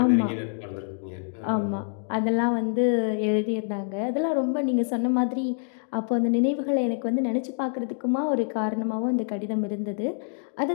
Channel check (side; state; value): right; silent; digital silence